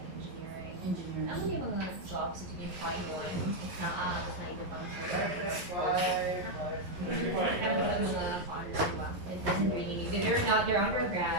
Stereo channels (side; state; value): left; late; 11 ms